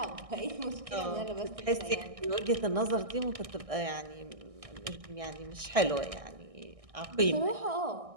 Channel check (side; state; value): left; late; 1.6 ms